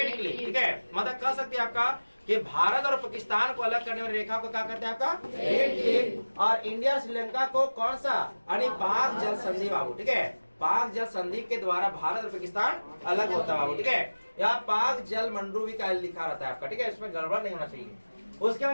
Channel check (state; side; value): inverted; both; correlation -1.00